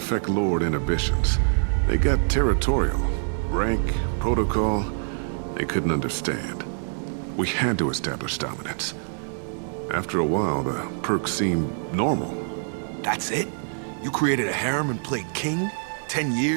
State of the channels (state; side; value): silent; left; digital silence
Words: lowered inhibitions. They got territorial. Rank, protocol, they couldn't understand. We had to establish dominance. After a while, the perks seemed normal. That's it? You created a harem and played king? 10